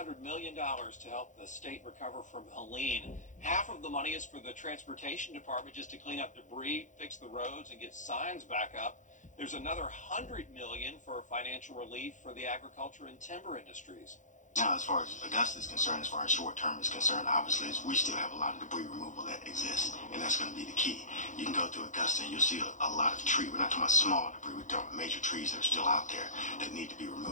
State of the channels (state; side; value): late; right; 0.36 ms